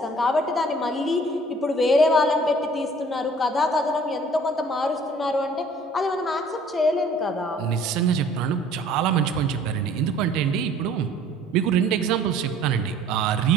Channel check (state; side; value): normal; both; correlation 0.53